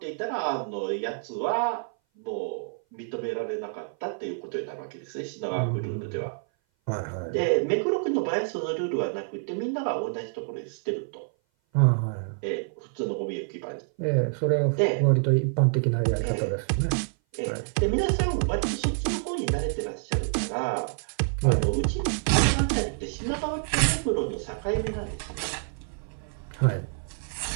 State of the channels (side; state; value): left; silent; 57 dB below the other